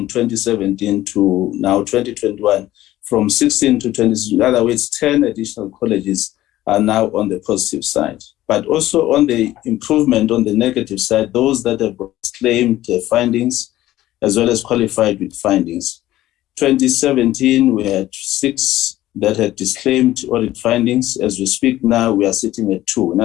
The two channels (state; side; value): quieter; right; 15.0 dB